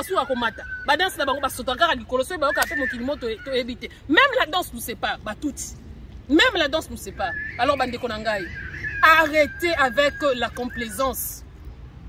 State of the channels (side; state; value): both; identical; correlation 1.00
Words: komata ba danse na bango ba sotaka likolo so ba ka pe mokili moto to éviter même la danse nous sépare ba touti même la danse nous sépare alors bande ko nangai arrêtez avec la complaisance